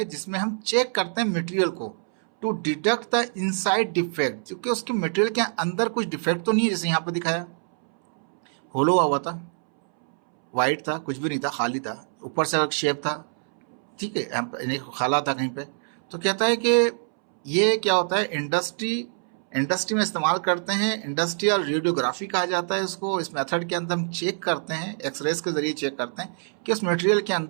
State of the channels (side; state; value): left; silent; 62 dB below the other